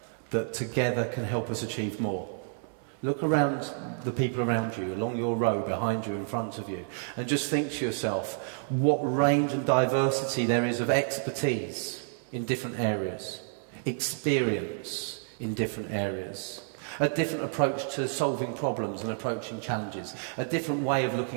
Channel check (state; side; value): silent; left; 58 dB below the other